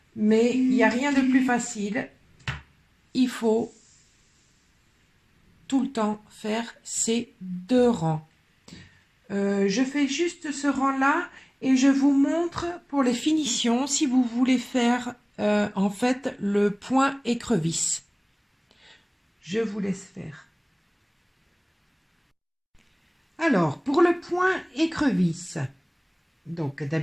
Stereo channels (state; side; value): identical; both; correlation 1.00